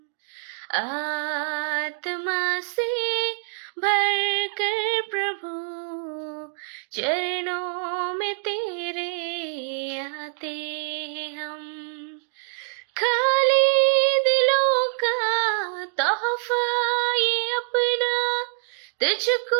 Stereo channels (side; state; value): left; silent; digital silence